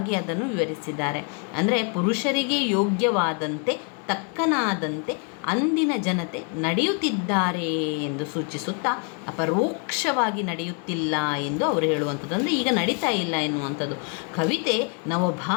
ಅದನ್ನು ವಿವರಿಸಿದ್ದಾರೆ. ಅಂದರೆ ಪುರುಷರಿಗೆ ಯೋಗ್ಯವಾದಂತೆ, ತಕ್ಕನಾದಂತೆ ಅಂದಿನ ಜನತೆ ನಡೆಯುತ್ತಿದ್ದಾರೆ ಎಂದು ಸೂಚಿಸುತ್ತಾ ಅಪರೋಕ್ಷವಾಗಿ ನಡೆಯುತ್ತಿಲ್ಲ ಎಂದು ಅವರು ಹೇಳುವಂಥದ್ದು. ಅಂದರೆ ಈಗ ನಡೀತಾ ಇಲ್ಲ ಎನ್ನುವಂಥದ್ದು. ಕವಿತೆ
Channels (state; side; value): quieter; right; 37.9 dB